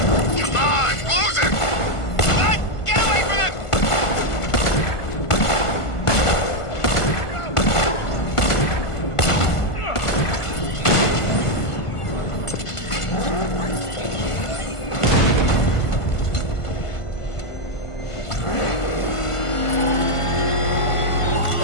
Come on, close him. What? Get away from him.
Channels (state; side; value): late; right; 1.5 ms